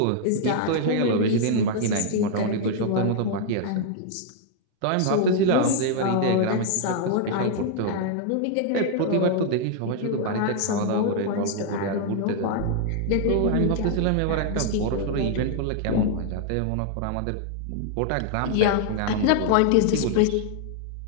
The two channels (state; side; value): different; both; correlation 0.00